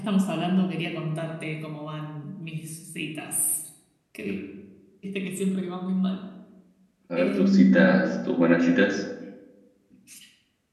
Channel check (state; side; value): identical; both; correlation 1.00